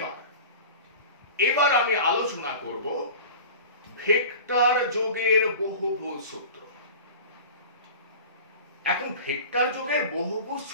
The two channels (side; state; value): both; inverted; correlation -0.37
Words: এবার আমি আলোচনা করব ভেক্টর যোগের বহুভুজ সূত্র। এখন ভেক্টর যোগের বহুভুজ